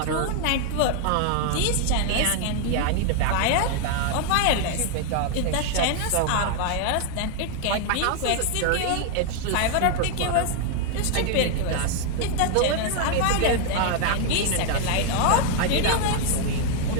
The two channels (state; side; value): different; both; correlation 0.00